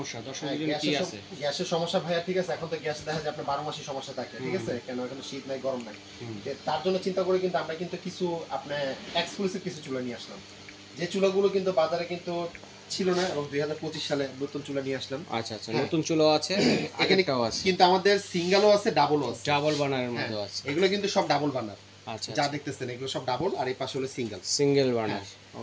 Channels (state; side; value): identical; both; correlation 1.00